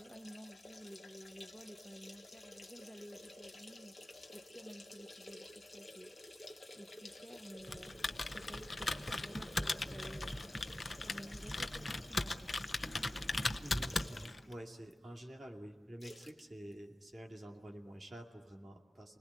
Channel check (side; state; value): both; normal; correlation 0.96